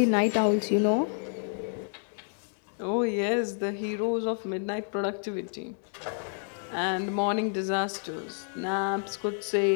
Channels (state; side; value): silent; right; 58 dB below the other